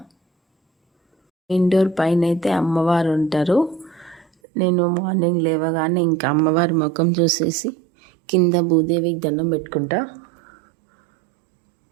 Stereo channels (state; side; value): drops out; left; at 4.2 s